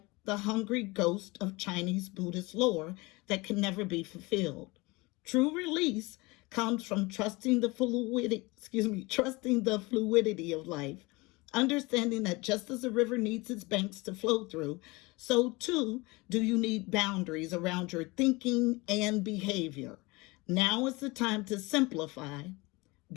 the hungry ghost of Chinese Buddhist lore that can never be fulfilled. True release comes from trusting the fluidity of life, understanding that just as a river needs its banks to flow through, so too do you need boundaries around your thinking and behavior. Now is the time to simplify,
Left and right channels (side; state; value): right; quieter; 24.0 dB